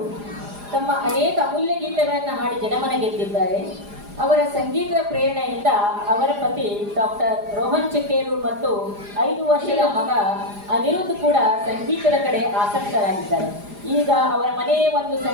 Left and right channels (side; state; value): left; late; 4.9 ms